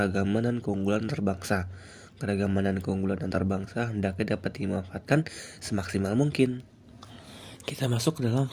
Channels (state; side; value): identical; both; correlation 1.00